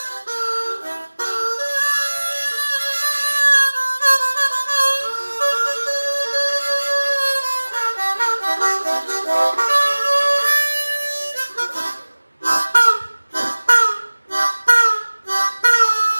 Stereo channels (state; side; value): inverted; both; correlation -1.00